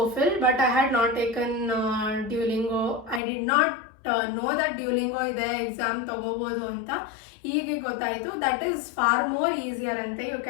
but I had not taken Duolingo. I did not know that Duolingo ಇದೆ, exam ತಗೋಬೋದು ಅಂತ. ಈಗ ಗೊತ್ತಾಯಿತು that is far more easier ಅಂತೆ, you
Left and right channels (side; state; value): right; drops out; at 3.2 s